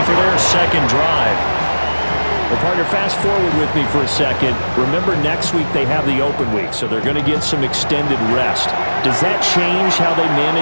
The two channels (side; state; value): both; inverted; correlation -1.00